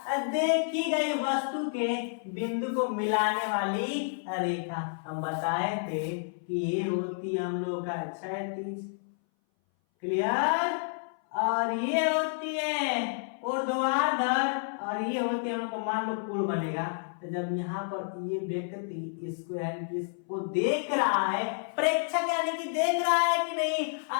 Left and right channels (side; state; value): right; silent; 58 dB below the other